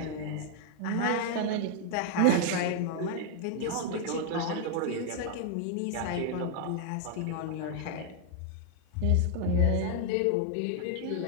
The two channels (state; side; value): different; both; correlation 0.00